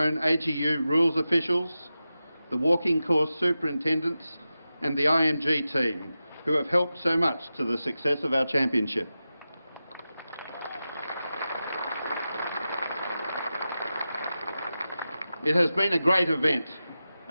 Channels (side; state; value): both; inverted; correlation -0.93